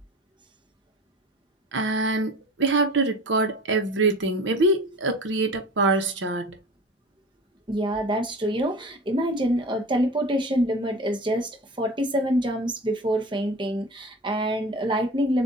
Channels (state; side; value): normal; both; correlation 0.36